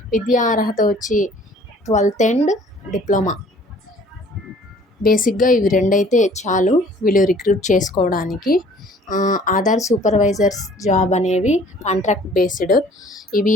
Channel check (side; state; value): both; normal; correlation 0.54